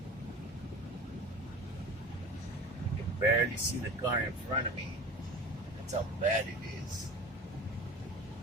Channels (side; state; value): both; normal; correlation 0.36